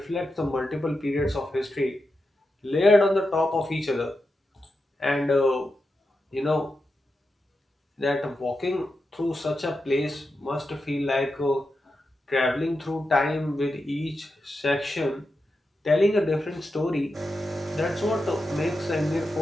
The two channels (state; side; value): normal; both; correlation 0.89